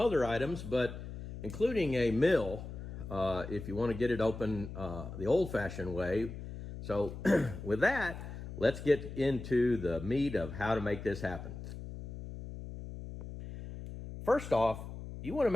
items, but including a mill if you want to get it open the old-fashioned way. So with that, let's get into the meat of how to make this happen. First off, you want to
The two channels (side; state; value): left; noise; hum, 10 dB below the sound